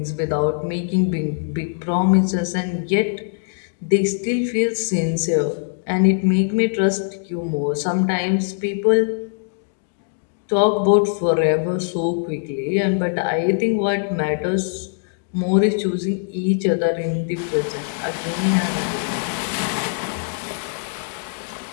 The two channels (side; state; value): right; silent; digital silence